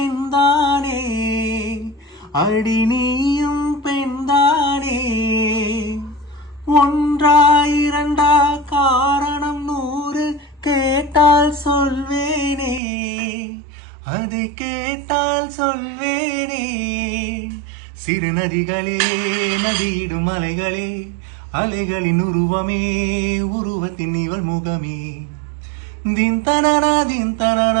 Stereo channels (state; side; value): drops out; left; at 12.8 s